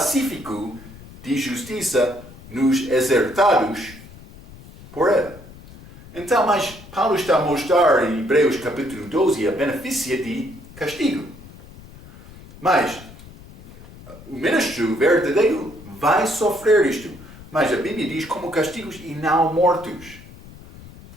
de justiça nos exertados por ela. Então, mas Paulo está a mostrar em Hebreus capítulo 12 a benefício de castigo. Mas o ministro verdadeiro vai sofrer isto. Mas a Bíblia diz como castigos e não mortos.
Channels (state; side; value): noise; left; rumble, 19 dB below the sound